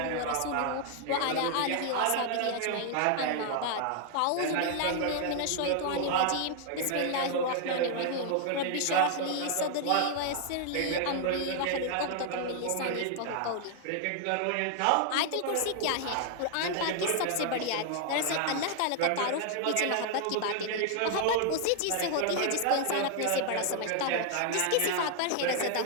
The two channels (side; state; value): both; different; correlation 0.00